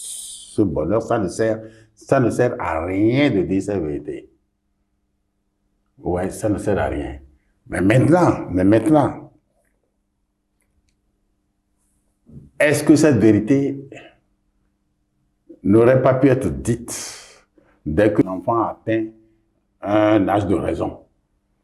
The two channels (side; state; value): both; identical; correlation 1.00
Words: bonheur, ça ne sert à rien de dire cette vérité. Ouais, ça ne sert à rien. Mais maintenant, est-ce que cette vérité n'aurait pas pu être dite dès que l'enfant atteint un âge de raison?